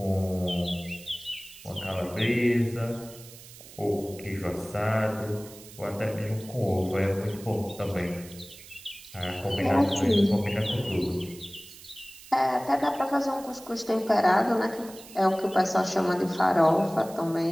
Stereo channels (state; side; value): noise; right; hiss, 18 dB below the sound